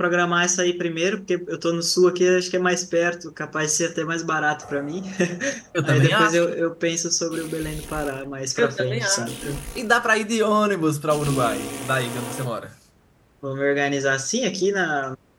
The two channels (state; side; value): identical; both; correlation 1.00